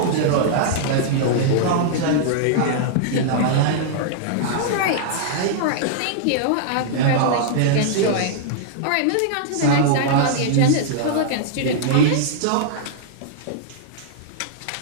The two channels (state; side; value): different; both; correlation -0.01